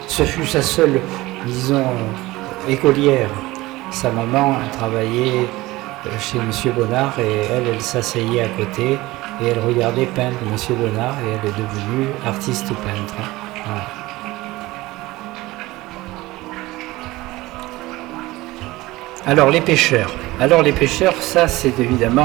seule, disons, écolière. Sa maman travaillait chez Monsieur Bonnard et elle s'asseyait à côté et elle regardait peindre Monsieur Bonnard et elle est devenue artiste peintre. Voilà. Alors les pêcheurs, ça c'est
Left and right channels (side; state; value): left; quieter; 19.2 dB